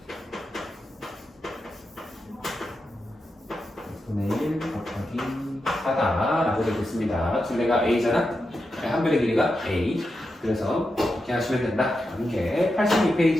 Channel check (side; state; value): both; normal; correlation 0.88